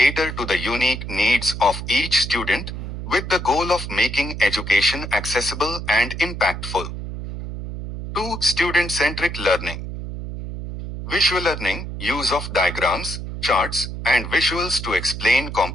to the unique needs of each student, with the goal of making education accessible and impactful. 2. Student-centric learning. Visual learning, use of diagrams, charts, and visuals to explain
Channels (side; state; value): right; noise; hum, 7 dB below the sound